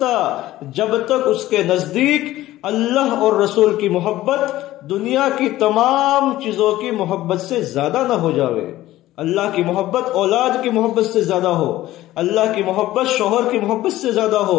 جب تک اس کے نزدیک اللہ اور رسول کی محبت دنیا کی تمام چیزوں کی محبت سے زیادہ نہ ہو جاوے۔ اللہ کی محبت اولاد کی محبت سے زیادہ ہو، اللہ کی محبت شوہر کی محبت سے زیادہ ہو،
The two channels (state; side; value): quieter; right; 15.5 dB